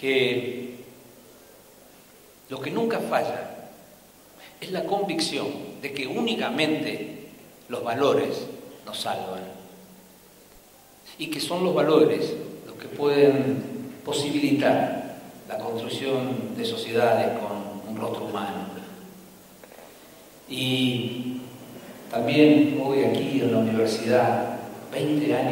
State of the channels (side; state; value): both; identical; correlation 1.00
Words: lo que nunca falla es la convicción de que únicamente los valores nos salvan y que son los valores los que pueden posibilitar la construcción de sociedades con un rostro humano. Y también hoy aquí en la universidad, 20